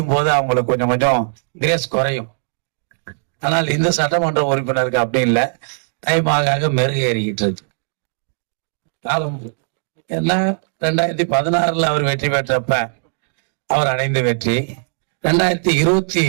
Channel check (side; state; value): left; silent; digital silence